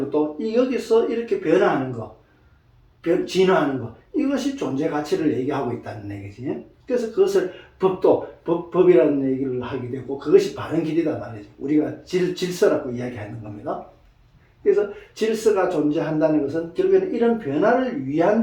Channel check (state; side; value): identical; both; correlation 1.00